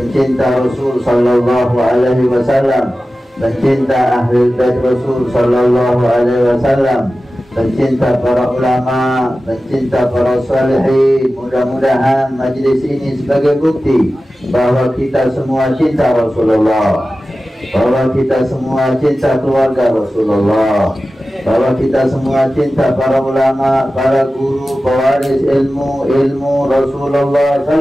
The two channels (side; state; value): both; normal; correlation 0.95